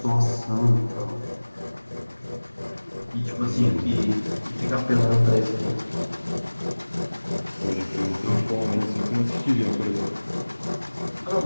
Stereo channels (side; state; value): both; inverted; correlation -1.00